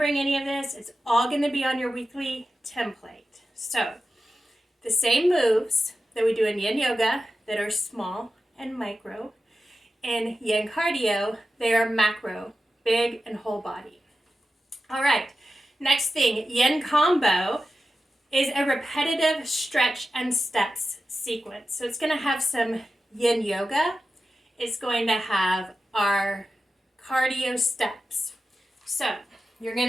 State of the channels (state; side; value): normal; both; correlation 0.92